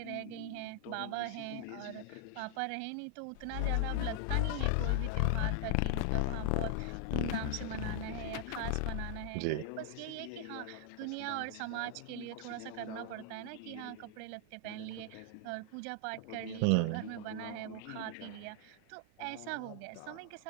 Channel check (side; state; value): both; different; correlation 0.00